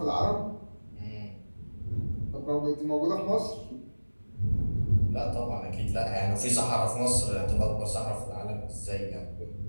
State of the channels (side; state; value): both; inverted; correlation -1.00